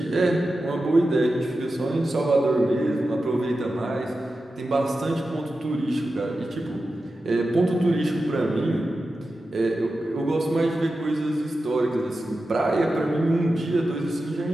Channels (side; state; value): both; normal; correlation 0.92